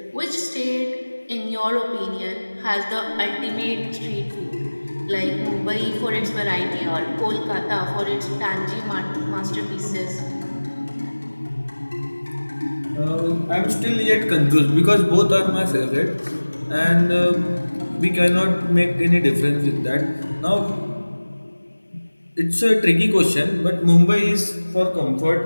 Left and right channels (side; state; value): both; inverted; correlation -1.00